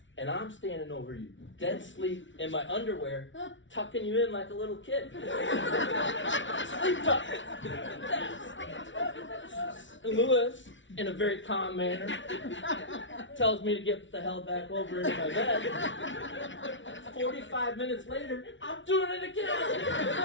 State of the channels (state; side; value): late; right; 0.55 ms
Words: And I'm standing over you, dead sleep in my underwear, tucking you in like a little kid. Sleep tuck. And Lewis, in a very calm manner, tells me to get the hell back over into my bed. 45 minutes later, I'm doing it again.